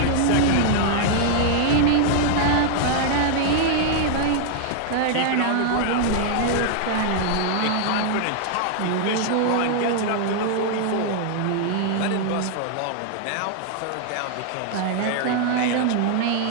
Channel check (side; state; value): both; different; correlation 0.00